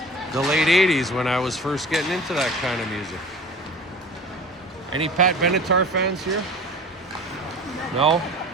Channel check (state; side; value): normal; both; correlation 0.39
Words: the late 80s when I was first getting into that kind of music. Any Pat Benatar fans here? No?